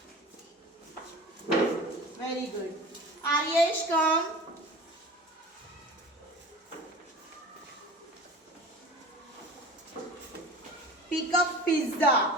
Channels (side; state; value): both; normal; correlation 0.38